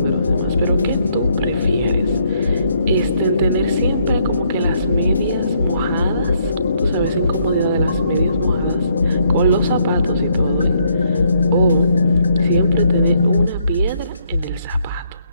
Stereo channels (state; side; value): inverted; both; correlation -0.71